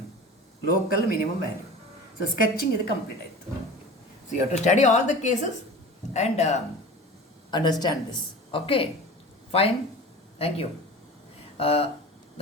local minimum value. So sketching ಇದು ಕಂಪ್ಲೀಟ್ ಆಯಿತು. So you have to study all the cases and understand this. Okay, fine, thank you.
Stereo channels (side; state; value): both; normal; correlation 0.36